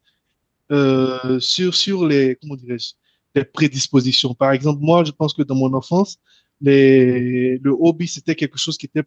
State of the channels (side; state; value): both; identical; correlation 1.00